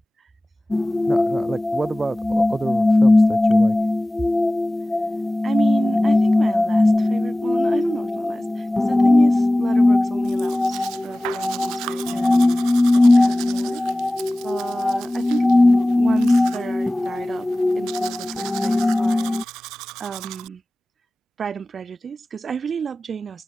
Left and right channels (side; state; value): both; normal; correlation 0.98